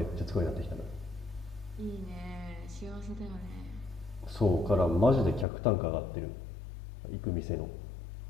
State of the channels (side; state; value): right; drops out; at 5.5 s